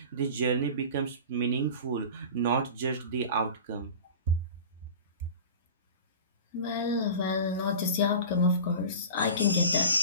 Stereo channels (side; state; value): both; inverted; correlation -0.35